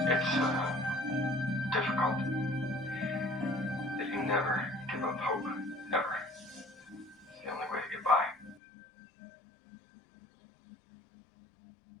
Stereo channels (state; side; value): drops out; right; at 8.6 s